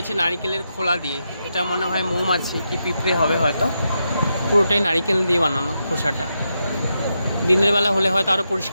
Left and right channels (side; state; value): both; inverted; correlation -0.85